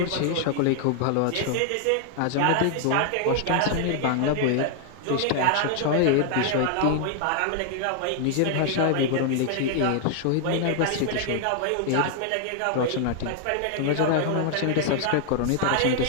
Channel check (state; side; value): different; both; correlation 0.00